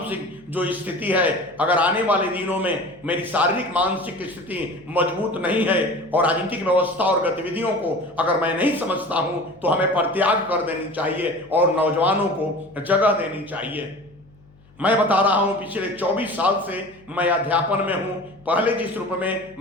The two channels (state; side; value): noise; left; hum, 28 dB below the sound